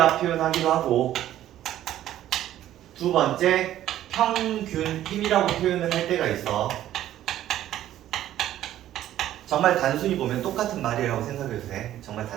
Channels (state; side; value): quieter; left; 12.7 dB